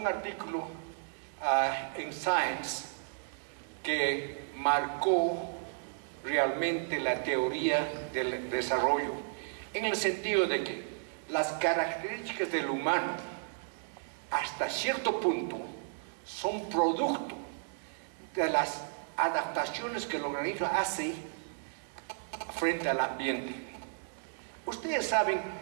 artículo en Science que marcó realmente la teoría del desarrollo, en el sentido de que las características del humano hasta cierto punto son producto de las adaptaciones que el organismo hace frente al ambiente. Ustedes saben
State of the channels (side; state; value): left; silent; digital silence